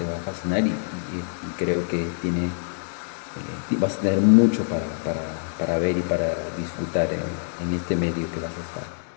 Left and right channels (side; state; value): right; silent; digital silence